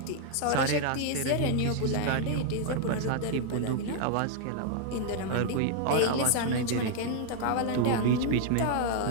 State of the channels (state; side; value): different; both; correlation 0.00